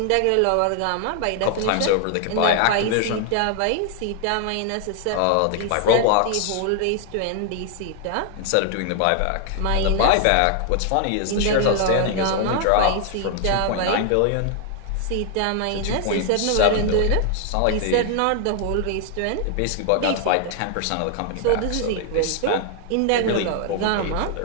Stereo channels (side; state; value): both; different; correlation 0.00